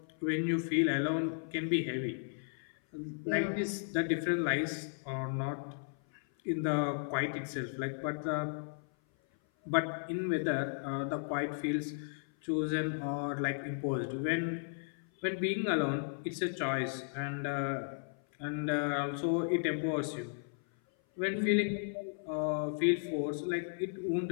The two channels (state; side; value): silent; right; 55 dB below the other